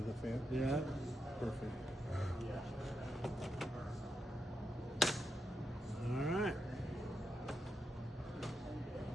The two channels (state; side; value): normal; both; correlation 0.85